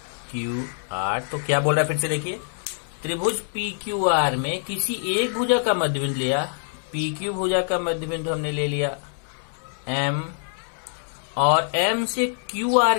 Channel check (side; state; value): right; silent; digital silence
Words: क्यू आर। तो क्या बोल रहा है फिर से देखिए, त्रिभुज पी क्यू आर में किसी एक भुजा का मध्य बिंदु लिया, पी क्यू भुजा का मध्य बिंदु हमने ले लिया एम, और एम से क्यू आर